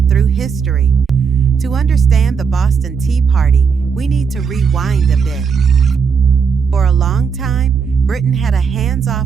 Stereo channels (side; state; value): left; quieter; 6.0 dB